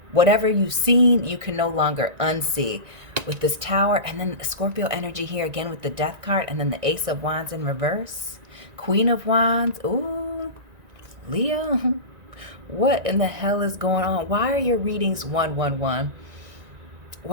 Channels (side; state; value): left; late; 1.9 ms